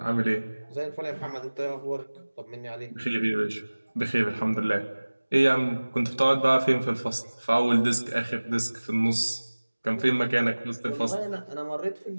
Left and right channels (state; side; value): inverted; both; correlation -1.00